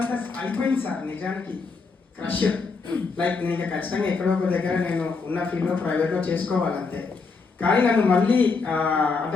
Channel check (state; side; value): quieter; right; 4.5 dB